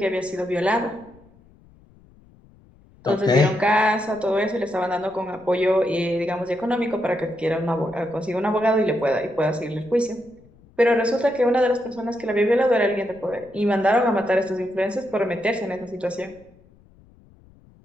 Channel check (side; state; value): left; noise; rumble, 27 dB below the sound